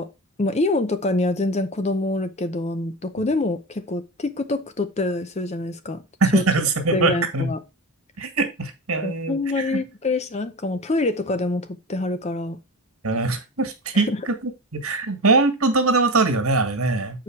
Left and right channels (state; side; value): normal; both; correlation 0.27